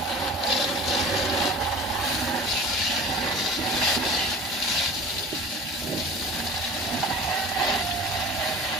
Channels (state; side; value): normal; both; correlation 0.40